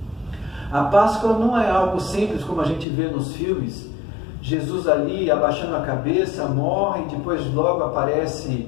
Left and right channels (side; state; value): right; drops out; at 2.9 s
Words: A Páscoa não é algo simples como a gente vê nos filmes. Jesus ali abaixando a cabeça, morre, e depois logo aparece